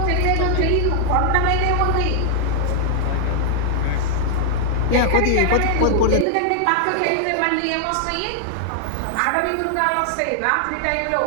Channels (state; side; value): different; both; correlation -0.01